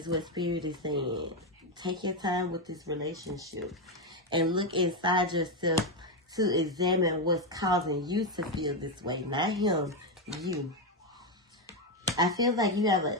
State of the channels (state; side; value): normal; both; correlation 0.07